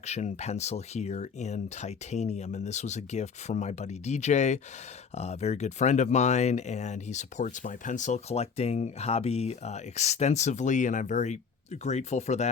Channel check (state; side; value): quieter; right; 5.9 dB